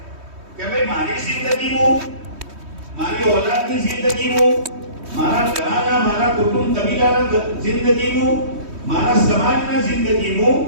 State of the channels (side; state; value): left; late; 3.2 ms